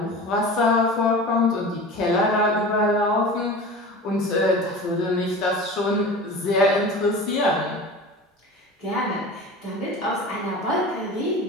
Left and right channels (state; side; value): normal; both; correlation 0.35